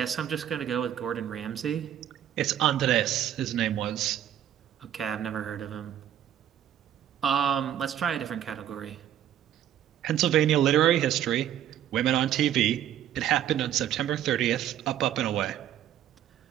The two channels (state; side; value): quieter; left; 10.9 dB